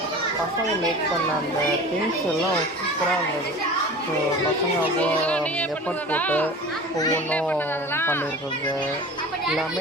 பசங்க மேக் பண்ண அந்த திங்ஸ் எல்லாம் சூப்பராக இருந்தது. ஸோ பசங்க அவ்வளோ எஃபர்ட் போட்டு ஒவ்வொன்றும் பண்ணியிருக்கிறது எல்லாமே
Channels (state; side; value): normal; both; correlation 0.38